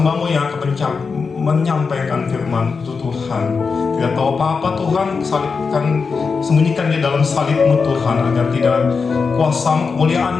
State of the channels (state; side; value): quieter; right; 5.0 dB